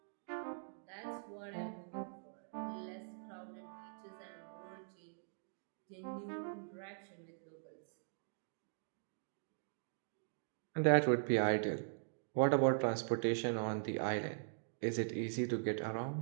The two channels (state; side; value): silent; left; digital silence